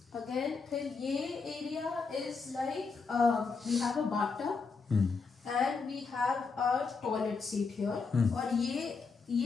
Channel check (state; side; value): quieter; right; 4.8 dB